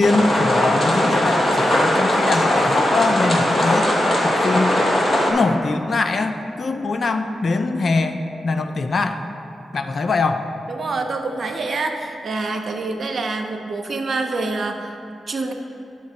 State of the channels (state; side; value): normal; both; correlation 0.87